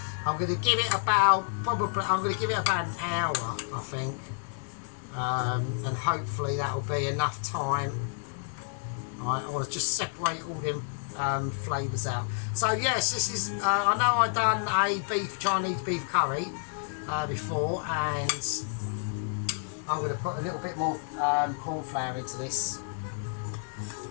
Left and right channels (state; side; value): silent; right; digital silence